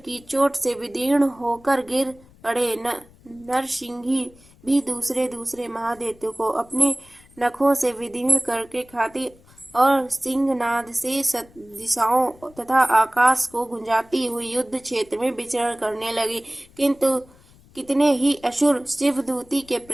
चोट से विदीर्ण होकर गिर पड़े। नरसिंही भी दूसरे महादैत्यों को अपने नखों से विदीर्ण करके खाती और सिंहनाद से दिशाओं तथा आकाश को गुंजाती हुई युद्ध क्षेत्र में विचरण करने लगी। किंतु कितने ही असुर शिवदूती के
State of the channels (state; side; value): noise; left; rumble, 26 dB below the sound